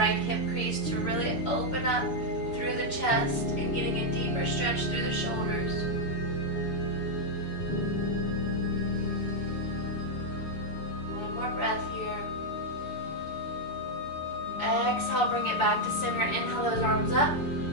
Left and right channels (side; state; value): right; late; 7.0 ms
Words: hip crease to really open up through the chest and getting a deeper stretch through the shoulders. One more breath here. Exhale, bring it back to center. Inhale those arms up.